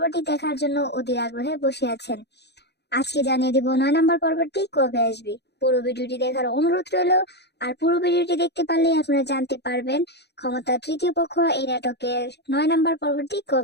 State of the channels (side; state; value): right; late; 0.49 ms